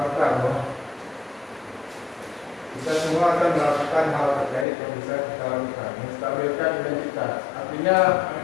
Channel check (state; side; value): drops out; right; at 4.7 s